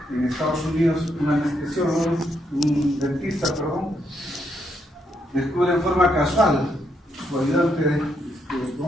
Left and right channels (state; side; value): normal; both; correlation 0.77